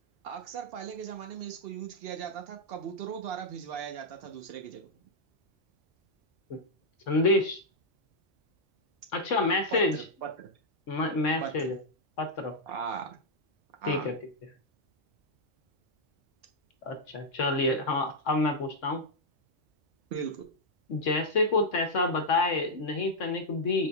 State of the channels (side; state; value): both; normal; correlation -0.05